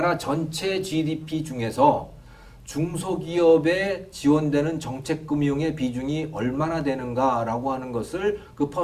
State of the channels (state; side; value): identical; both; correlation 1.00